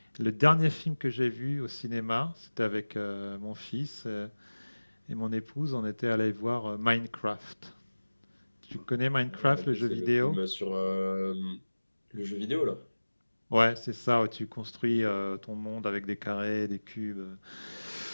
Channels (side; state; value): both; inverted; correlation -1.00